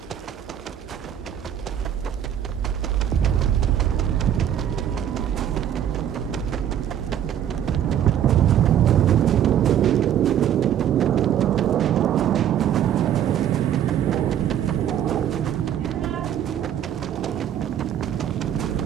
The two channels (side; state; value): left; quieter; 10.1 dB